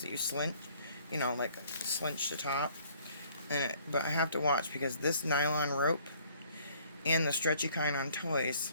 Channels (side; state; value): both; inverted; correlation -0.59